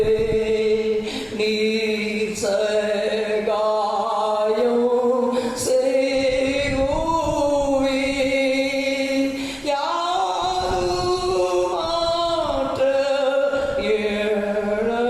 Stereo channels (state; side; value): identical; both; correlation 1.00